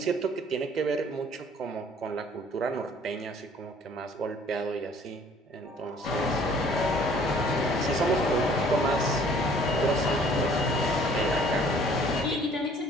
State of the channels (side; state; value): both; normal; correlation 0.55